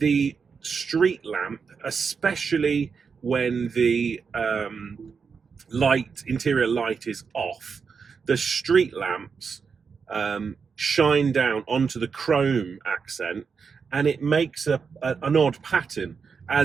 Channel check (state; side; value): quieter; left; 5.7 dB